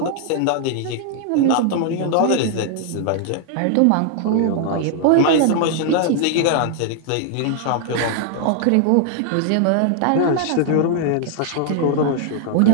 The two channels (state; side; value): different; both; correlation 0.00